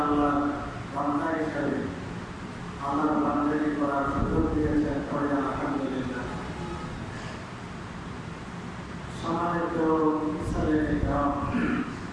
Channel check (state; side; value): identical; both; correlation 1.00